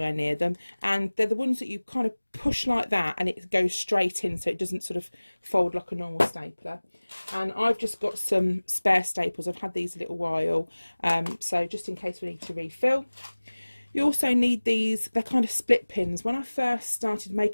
near them. And they're the ones that you kind of push like that and it goes straight in, so it doesn't sort of fold like a normal stapler. And I've just got some spare staples. I've had these a little while, so just in case we need to refill. You also need these, they're kind of split pins. When I first started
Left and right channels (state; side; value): inverted; both; correlation -1.00